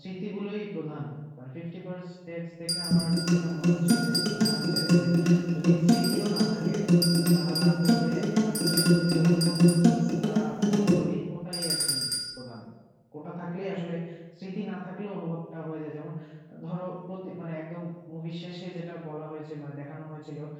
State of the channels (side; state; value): both; identical; correlation 1.00